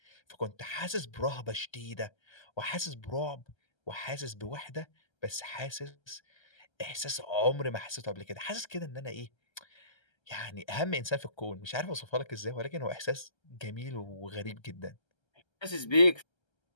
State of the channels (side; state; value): right; late; 1.3 ms